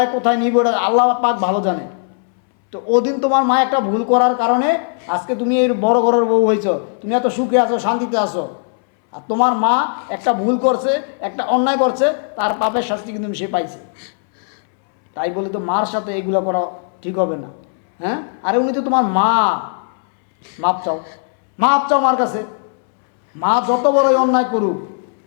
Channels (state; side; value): silent; right; 68 dB below the other